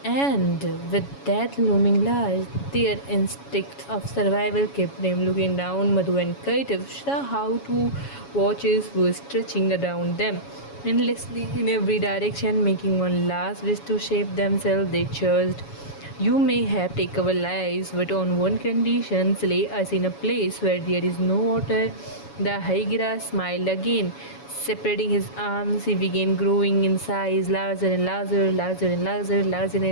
with that looming large, their instincts of survival kept them looking down. Madhu and Kaitav saw how two watches were stretching around them, endlessly in every direction, making one last wish to shape themselves. They charged. You may have taken our lives, but on one condition, lay us in a place where there is no water. The Hydra smiled again. Separating his arms, he began growing in size, larger and larger, larger and larger, larger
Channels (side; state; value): right; late; 7.2 ms